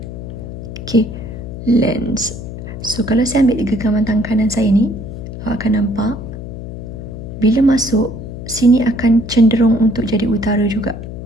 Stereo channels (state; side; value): noise; left; hum, 9 dB below the sound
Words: Okey, Lenz. So, kalau saya ambil genggaman tangan kanan saya ni, awak akan nampak bila masuk, sini akan cenderung untuk jadi utara juga.